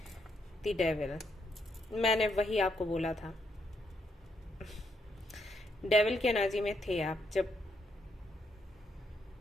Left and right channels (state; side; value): normal; both; correlation 0.77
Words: द डेविल, मैंने वही आपको बोला था। डेविल की एनर्जी में थे आप जब